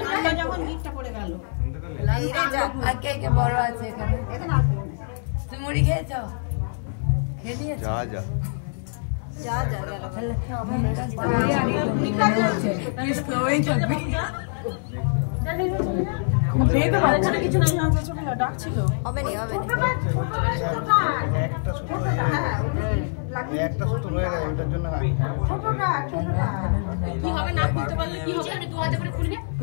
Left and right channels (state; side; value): silent; right; digital silence